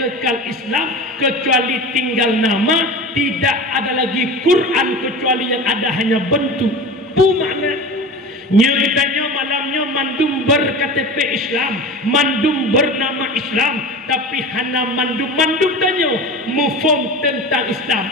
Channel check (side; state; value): both; normal; correlation 0.32